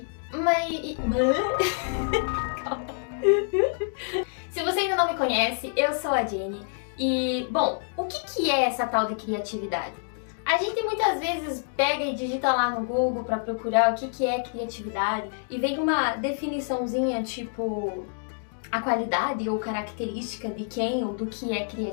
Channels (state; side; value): silent; right; digital silence